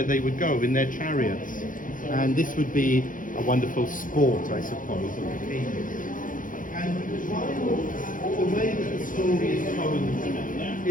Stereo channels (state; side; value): late; right; 0.39 ms